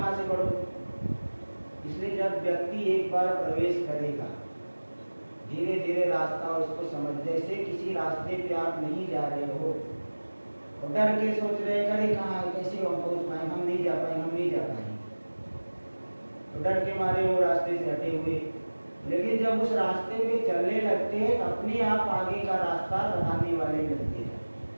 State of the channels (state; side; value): inverted; both; correlation -1.00